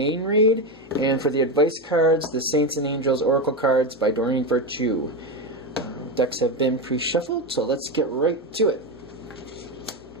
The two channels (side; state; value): both; normal; correlation 0.14